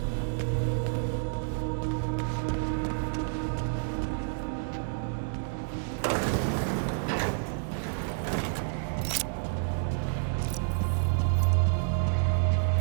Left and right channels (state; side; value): silent; left; digital silence